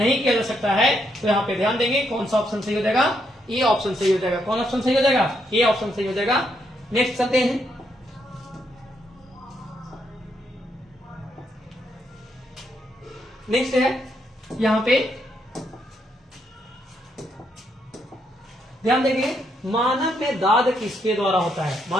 किया जा सकता है। तो यहाँ पे ध्यान देंगे कौन सा ऑप्शन सही हो जाएगा? ए ऑप्शन सही हो जाएगा। कौन ऑप्शन सही हो जाएगा? ए ऑप्शन सही हो जाएगा। नेक्स्ट चलते हैं। नेक्स्ट है यहां पे ध्यान देंगे, मानव में दाद किसके द्वारा होता है?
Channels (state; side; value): normal; both; correlation 0.77